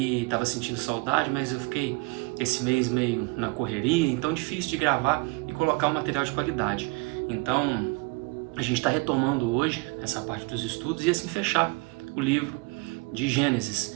estava sentindo saudade, mas eu fiquei esse mês meio na correria, então difícil de gravar e colocar um material de qualidade. Então, a gente está retomando hoje essa parte dos estudos e assim fechar o livro de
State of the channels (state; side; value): quieter; left; 26.9 dB